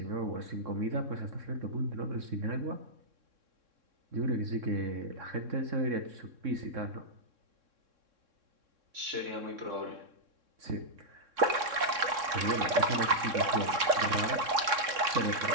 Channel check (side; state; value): left; late; 3.6 ms